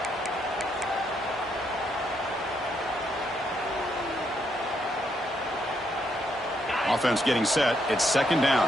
Offense getting set. It's 2nd down.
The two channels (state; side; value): normal; both; correlation 0.76